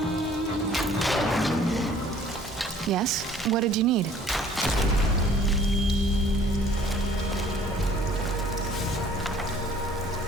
Yes? What did you need?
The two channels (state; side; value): normal; both; correlation 0.54